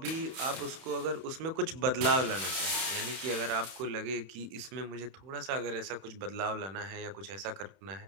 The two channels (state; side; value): late; left; 31 ms